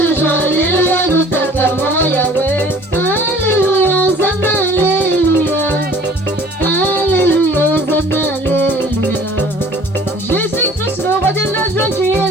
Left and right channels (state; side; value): normal; both; correlation 0.50